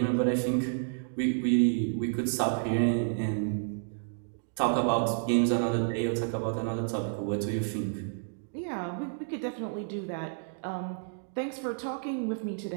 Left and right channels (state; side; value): silent; left; digital silence